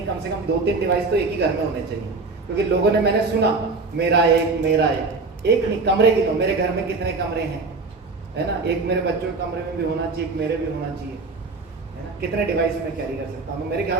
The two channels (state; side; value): quieter; left; 3.9 dB